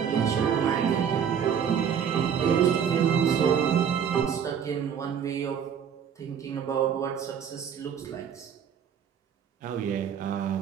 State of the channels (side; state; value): left; quieter; 7.8 dB